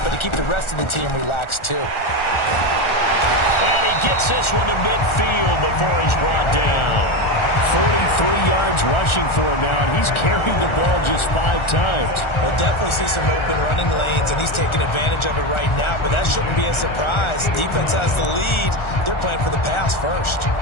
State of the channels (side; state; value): right; late; 1.4 ms